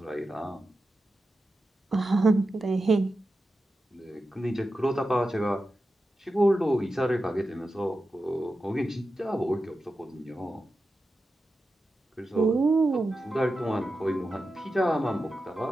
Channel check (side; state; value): both; normal; correlation 0.91